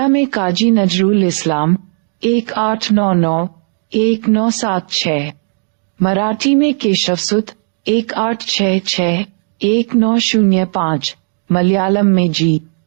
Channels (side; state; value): left; silent; digital silence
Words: में काजी नजरुल इस्लाम 1899-1976, मराठी में केशवसुत 1866-1905, मलयालम में जी.